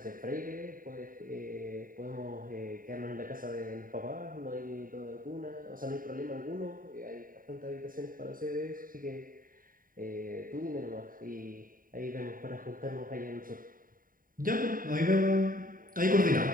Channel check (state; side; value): late; left; 0.41 ms